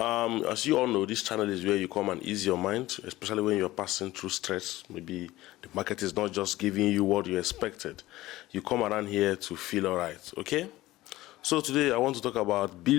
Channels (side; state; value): right; quieter; 17.2 dB